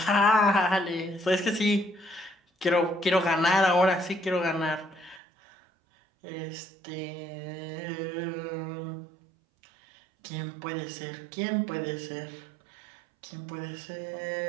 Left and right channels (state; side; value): drops out; left; at 5.2 s